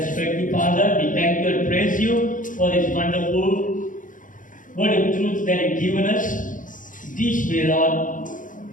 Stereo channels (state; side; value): late; right; 0.38 ms